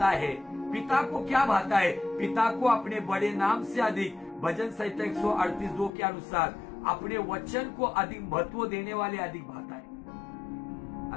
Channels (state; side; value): drops out; right; at 5.9 s